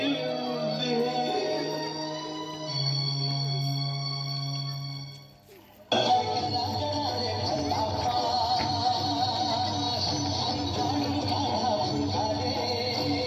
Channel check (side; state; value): both; identical; correlation 1.00